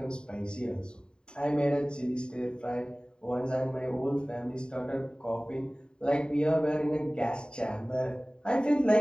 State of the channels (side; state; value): right; late; 0.049 ms